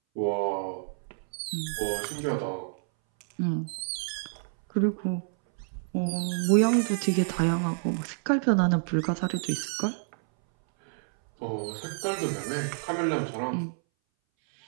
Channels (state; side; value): silent; left; 59 dB below the other